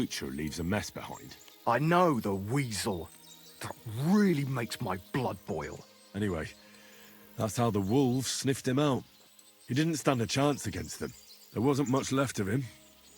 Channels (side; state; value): both; identical; correlation 1.00